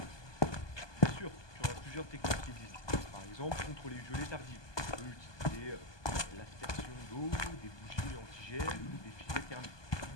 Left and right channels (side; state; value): right; late; 1.2 ms